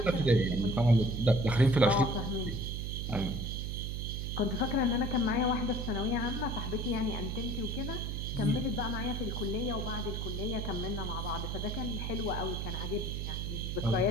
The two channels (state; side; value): noise; right; hum, 3 dB below the sound